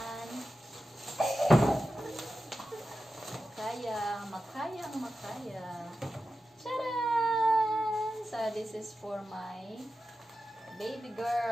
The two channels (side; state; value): both; normal; correlation 0.92